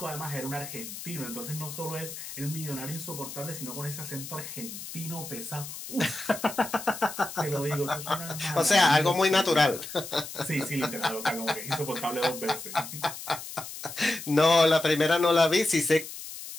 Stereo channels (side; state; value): left; noise; hiss, 10 dB below the sound